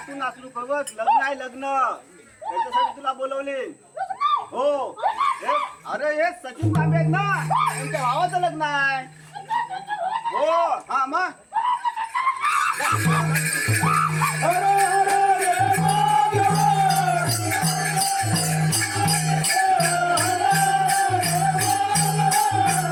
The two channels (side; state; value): both; identical; correlation 1.00